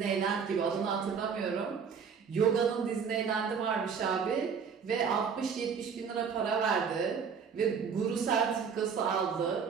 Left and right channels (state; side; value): quieter; left; 6.4 dB